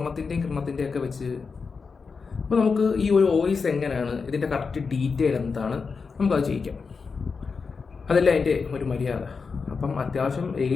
കിരണത്തിൻ്റെയൊക്കെ വെച്ച് അപ്പോൾ നമുക്ക് ഈ ഒരു വോയിസ് എങ്ങനെയാണ്, ഇതിൻ്റെ കറക്റ്റ് ഡീറ്റെയിൽ എന്താണ്, നമുക്കത് ചെയ്യിക്കാം. അതല്ല അതിൻ്റെ ഒരു മര്യാദ. അപ്പം അത്യാവശ്യം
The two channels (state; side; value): quieter; right; 5.0 dB